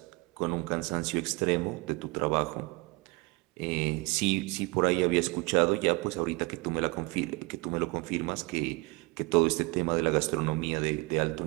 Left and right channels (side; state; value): left; quieter; 26.0 dB